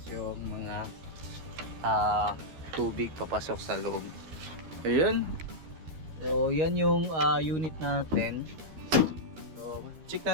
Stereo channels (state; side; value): late; left; 13 ms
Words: yung mga tubig papasok sa loob. Ayan. So yan yung unit natin. Check